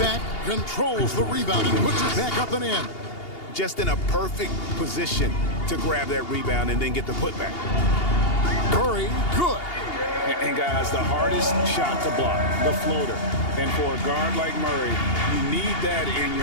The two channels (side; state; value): right; late; 2.8 ms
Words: controls the rebound and puts it back up and in. Just in a perfect position to grab that rebound and then get the putback. Murray, good. And guys, the hardest shot to block, the floater. And for a guard like Murray, you need that in